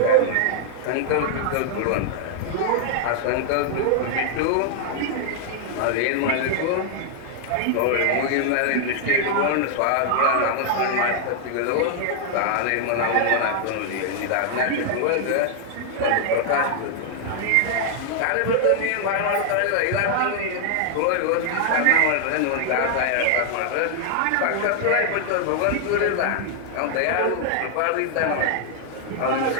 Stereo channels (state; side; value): different; both; correlation 0.00